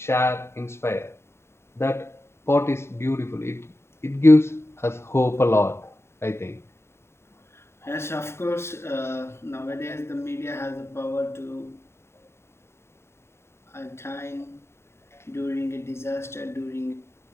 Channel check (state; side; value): late; right; 0.12 ms